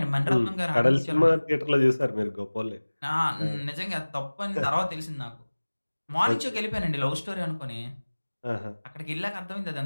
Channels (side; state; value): both; inverted; correlation -1.00